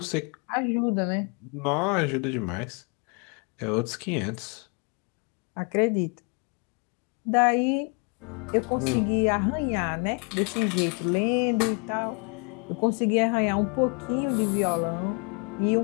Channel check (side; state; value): right; quieter; 36.3 dB